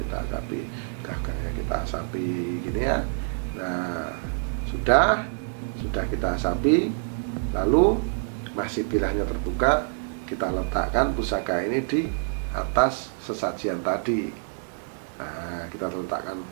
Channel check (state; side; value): silent; left; 60 dB below the other